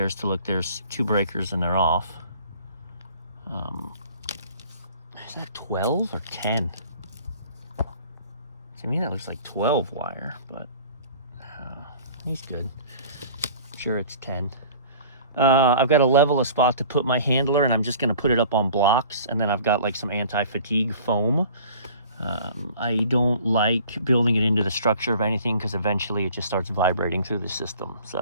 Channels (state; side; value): inverted; both; correlation -0.47